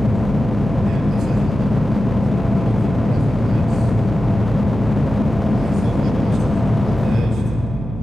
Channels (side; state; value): right; noise; hum, 10 dB below the sound